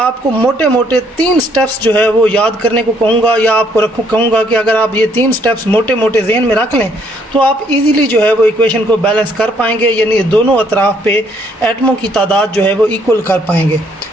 मोटे मोटे 3 स्टेप्स जो है वो याद करने को कहूँगा, या आपको कहूँगा कि अगर आप ये 3 स्टेप्स मोटे मोटे जहन में रख लें तो आप इजीली जो है वो इक्वेशन को बैलेंस कर पाएंगे, यानी दोनों अतराफ़ पे एटमों की तादाद जो है वो इक्वल कर पाएंगे।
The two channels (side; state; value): both; normal; correlation 0.67